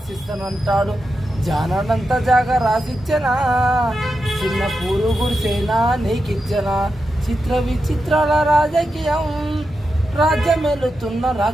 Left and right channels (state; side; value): normal; both; correlation 0.88